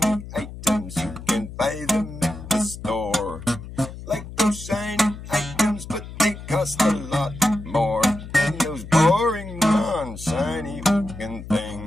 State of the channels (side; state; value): left; noise; hum, 12 dB below the sound